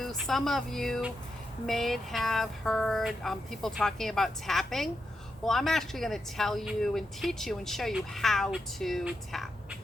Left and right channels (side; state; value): both; normal; correlation 0.85